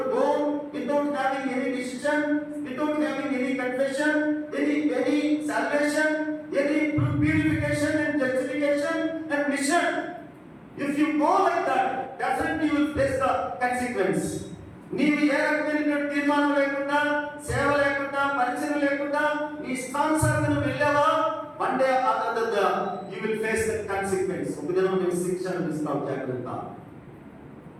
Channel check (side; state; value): both; identical; correlation 1.00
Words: own without having any decision, without having any confession, any salvation, any purification and justification and mission, if you go like that, definitely you will face the consequence. నీవు ఏ రకమైన తీర్మానం లేకుండా, సేవ లేకుండా, పరిచయం లేకుండా నీ ఇష్టానుసారంగా వెళ్ళావా, one day or another you will face the consequence. ఒక దినం నీవు శిక్ష అనుభవిస్తావు, జాగ్రత్త.